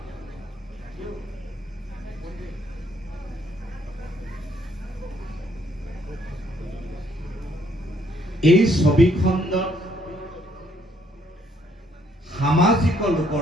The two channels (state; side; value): normal; both; correlation 0.68